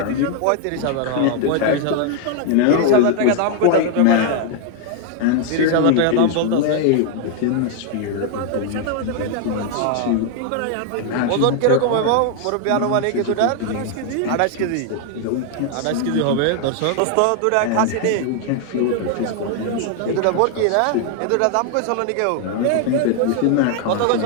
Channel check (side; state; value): both; different; correlation 0.00